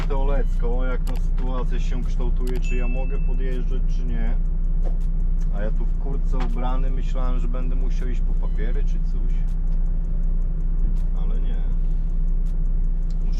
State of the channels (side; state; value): both; identical; correlation 1.00